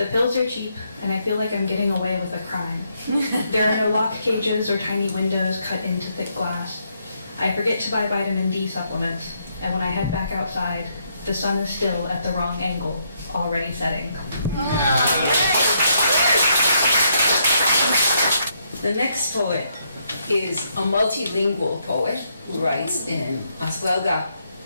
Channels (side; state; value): both; inverted; correlation -0.75